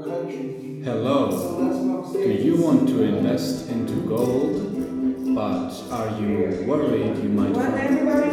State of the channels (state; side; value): identical; both; correlation 1.00